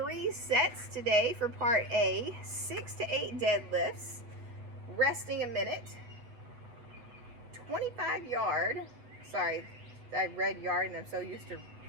sets today for part A, 6 to 8 deadlifts, resting a minute, 25 yard, sorry, I read yard and I'm so used to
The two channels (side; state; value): left; late; 8.1 ms